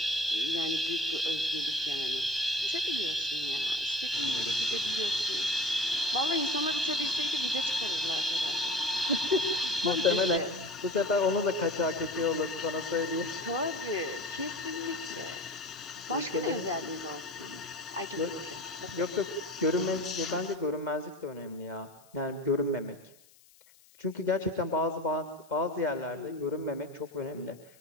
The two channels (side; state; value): left; noise; hiss, 27 dB below the sound